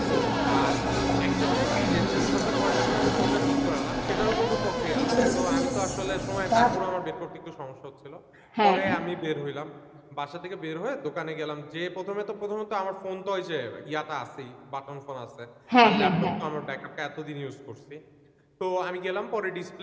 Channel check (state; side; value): identical; both; correlation 1.00